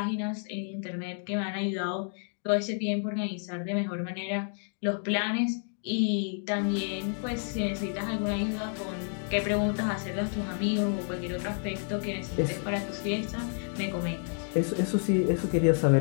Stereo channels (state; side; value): silent; right; 57 dB below the other